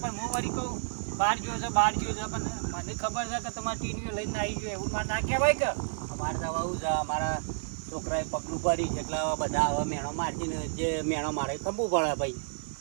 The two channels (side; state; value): left; silent; 57 dB below the other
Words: હું વળી કહું બહાર ગયો છે પણ મને ખબર છે કે તમારે ટીવીઓ લઈને આવી ગયો એવું મારે ના કહેવાય કે અમારે તો આવું છે અમારા છોકરાએ પગલું ભરી છે એટલે હવે બધા હવે મેણો મારતી ને જે મેણો મારે ખંભવું પડે ભાઈ